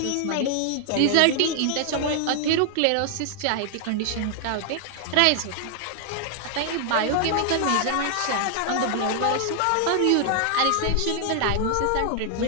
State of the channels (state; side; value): different; both; correlation 0.00